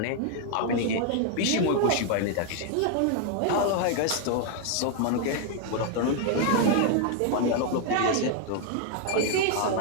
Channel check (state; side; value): different; both; correlation 0.00